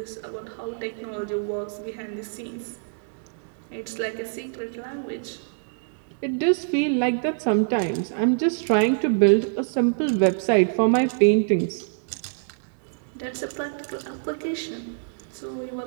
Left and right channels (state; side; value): silent; left; digital silence